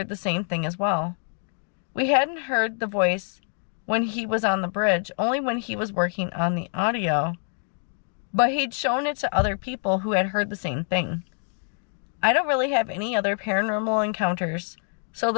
the same thing as well. We hadn't heard the voice when he was on the bridge, only when he was working on the audio. But he'd shown it to other people who had heard the same thing. I don't really have any other paranormal encounters, so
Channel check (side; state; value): right; silent; 61 dB below the other